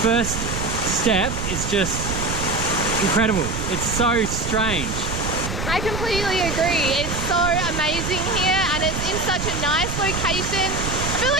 step is just incredible. It's so strange. I completely agree. It's so amazing here and it's in such a nice location. I feel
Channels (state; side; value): noise; right; rumble, 5 dB below the sound